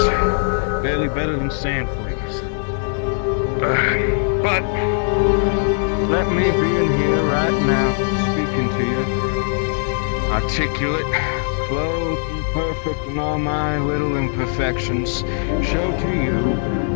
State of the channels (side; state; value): right; silent; digital silence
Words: barely better than sand fleas. But let me be in here right now, speaking to you, articulate, clothed and perfect in all my little imperfections, show to you